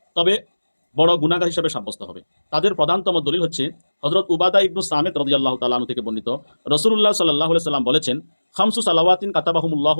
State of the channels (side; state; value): both; inverted; correlation -1.00